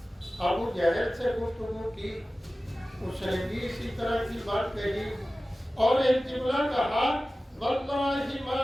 ابو جہل سے گفتگو کی، اس نے بھی اسی طرح کی بات کہی، اور ایک جملہ کہا، واللہ ما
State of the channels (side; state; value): both; normal; correlation 0.96